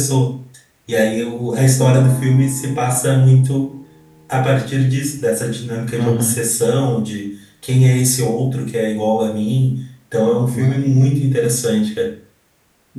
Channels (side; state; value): both; identical; correlation 1.00